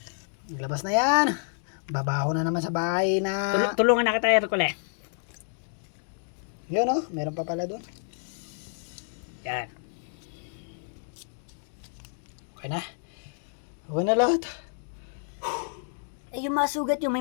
Nilabas na yan. Babaho na naman sa bahay na... Tulungan na kita, Hercule. Yun meron pa pala doon. Yan. Okay na. Okay na lahat. Yung mga sugat may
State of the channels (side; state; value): right; silent; digital silence